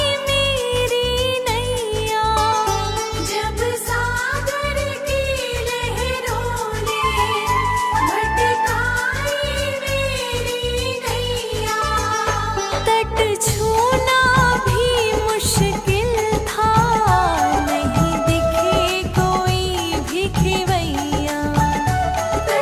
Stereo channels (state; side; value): identical; both; correlation 1.00